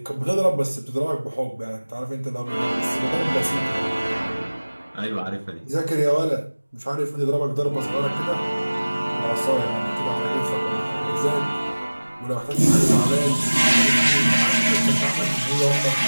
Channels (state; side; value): inverted; both; correlation -1.00